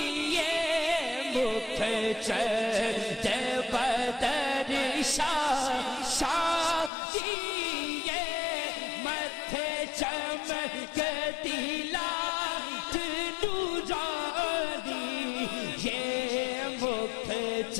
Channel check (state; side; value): drops out; right; at 6.9 s